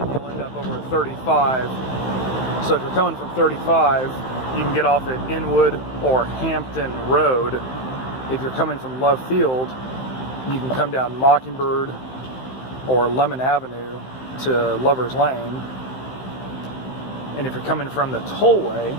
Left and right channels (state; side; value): late; right; 15 ms